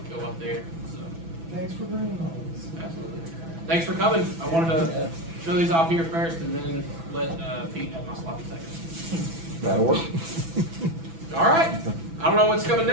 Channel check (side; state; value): left; late; 6.1 ms